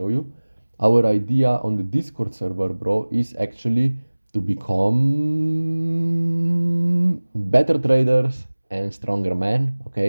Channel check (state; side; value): inverted; both; correlation -1.00